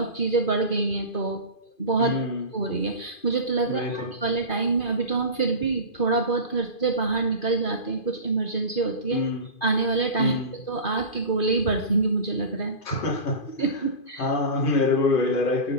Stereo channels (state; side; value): late; right; 2.5 ms